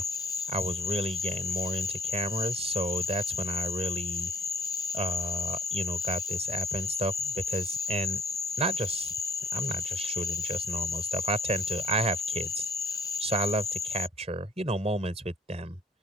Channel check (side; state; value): both; normal; correlation 0.59